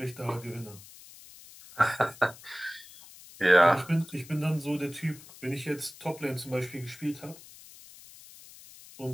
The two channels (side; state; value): left; noise; hiss, 19 dB below the sound